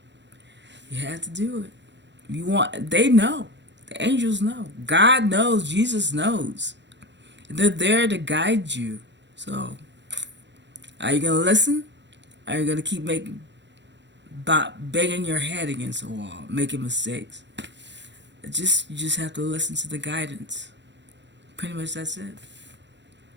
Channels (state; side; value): late; left; 0.52 ms